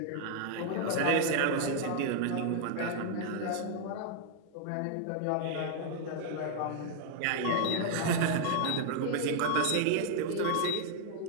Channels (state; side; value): different; both; correlation 0.00